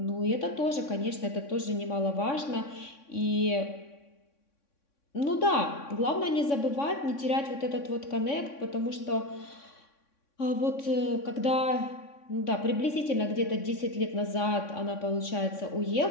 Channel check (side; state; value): right; late; 3.6 ms